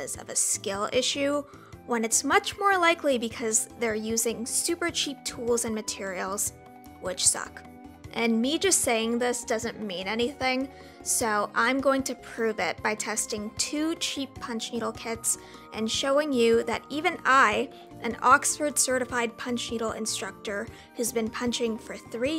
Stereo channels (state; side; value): identical; both; correlation 1.00